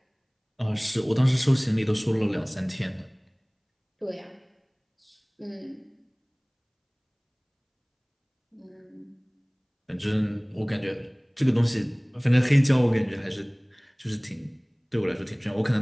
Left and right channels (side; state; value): both; identical; correlation 1.00